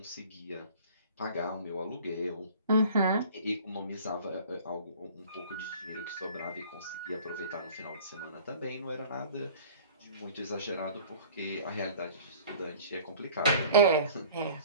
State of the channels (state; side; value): inverted; both; correlation -0.47